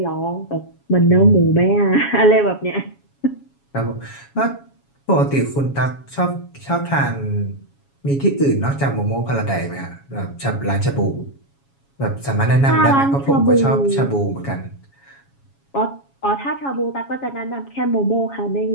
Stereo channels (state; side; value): late; right; 7.2 ms